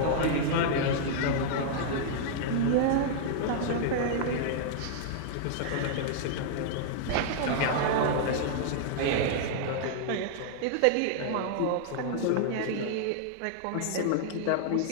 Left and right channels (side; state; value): both; different; correlation -0.01